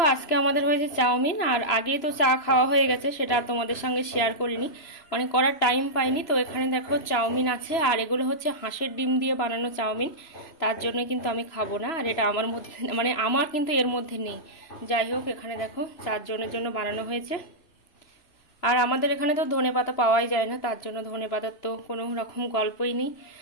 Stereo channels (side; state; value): right; late; 3.0 ms